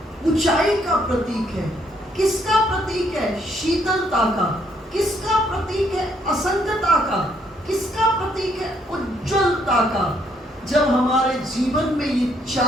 ऊंचाई का प्रतीक है। किसका प्रतीक है? शीतलता का। किसका प्रतीक है? असंगता का। किसका प्रतीक है? उज्ज्वलता का। जब हमारे जीवन में ये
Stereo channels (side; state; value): both; normal; correlation 0.70